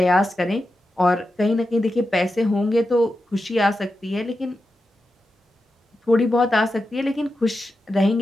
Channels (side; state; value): both; normal; correlation 0.90